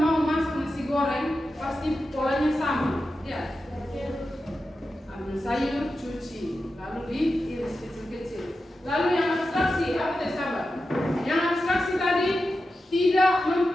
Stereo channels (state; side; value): normal; both; correlation 0.91